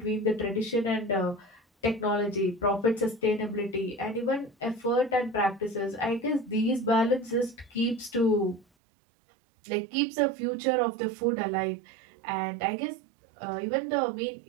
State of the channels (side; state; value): left; drops out; at 8.7 s